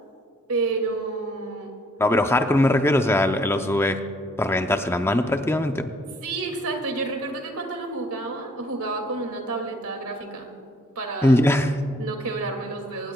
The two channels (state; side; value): normal; both; correlation 0.63